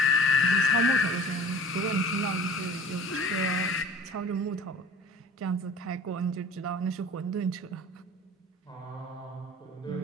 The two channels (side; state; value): both; normal; correlation 0.44